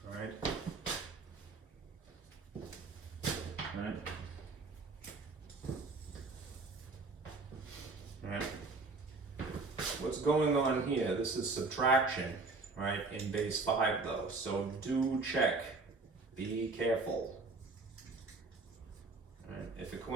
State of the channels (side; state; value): left; quieter; 3.7 dB